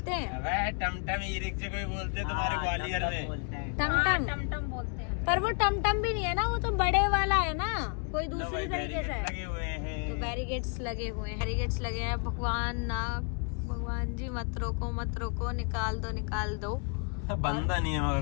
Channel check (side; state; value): right; quieter; 39.0 dB